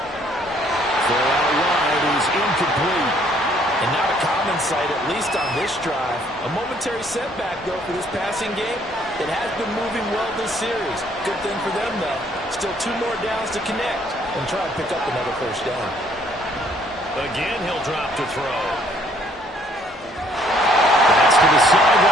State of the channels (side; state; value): both; normal; correlation 0.63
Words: Throw out wide is incomplete. And not a common sight, at least on this drive. A momentary setback, though, for this passing game. It has been moving well this series. Good thing for them, though. Still 2 more downs to connect and try and pick up another 1st down. Again, he'll drop to throw. That's to the